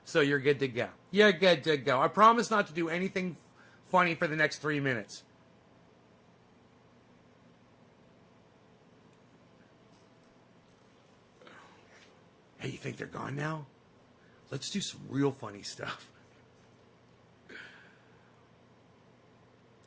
So you're good to go. You're good to go. I promise not to do anything funny for the next 3 minutes. Hey, you think they're gone now? Let's do some real funny stuff.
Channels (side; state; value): both; identical; correlation 1.00